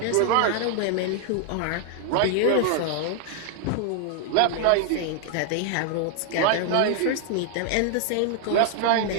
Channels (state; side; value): different; both; correlation 0.00